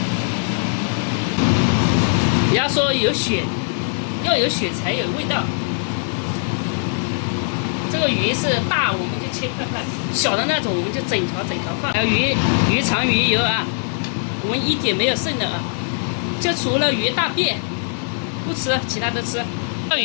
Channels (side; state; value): right; silent; digital silence